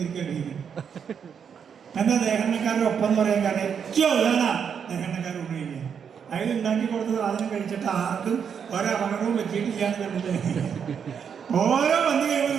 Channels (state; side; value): quieter; left; 7.3 dB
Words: എന്താ ദേഹന്നക്കാരുടെ ഒപ്പം എന്ന് പറയാൻ കാരണം ഏറ്റവും ഉള്ളതാണ് ദേഹന്നക്കാർ ഊണ് കഴിക്കുക. അതിൽ ഉണ്ടാക്കി കൊടുത്ത സാധനം കഴിച്ചിട്ട് ആർക്കും ഒരപകടവും പറ്റിയിട്ടില്ല എന്ന് കണ്ടിട്ട് ഓരോ പന്നി കഴിയുമ്പോൾ